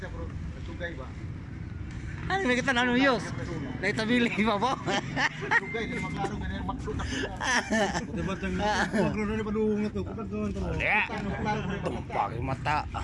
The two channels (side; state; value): both; identical; correlation 1.00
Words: bro. Sugay ba? Ano may kita nanu yus? Naitabili pa po. Sugay di maklaro ganyan maksud ako. Diba tang magro na padung na to. Kapag gawon to. Ya. Pakai mata.